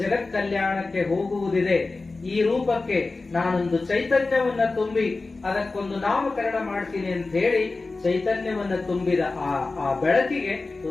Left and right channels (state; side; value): quieter; right; 3.6 dB